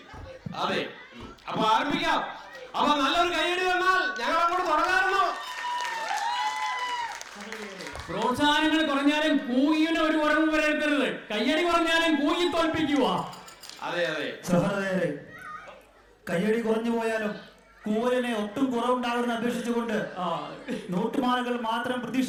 അതെ. അപ്പൊ ആരംഭിക്കാം. അപ്പൊ നല്ലൊരു കൈയടി തന്നാൽ ഞങ്ങൾ അങ്ങോട്ട് തുടങ്ങാറുണ്ടോ? പ്രോത്സാഹനങ്ങൾ കുറഞ്ഞാലും കൂകിന് ഒരു കുറവ് വരരുത്തരുത്. കയ്യടി കുറഞ്ഞാലും കൂകി തോൽപ്പിക്കുക. അതെ. സഹോദരരെ, കയ്യടി കുറഞ്ഞു പോയാലും കൂവലിനെ ഒട്ടും കുറവുണ്ടാകുമെന്ന് അപേക്ഷിച്ചുകൊണ്ട് നോട്ടുമാലകൾ മാത്രം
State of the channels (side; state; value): both; identical; correlation 1.00